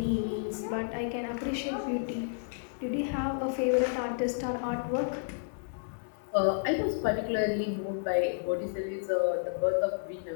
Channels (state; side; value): silent; right; digital silence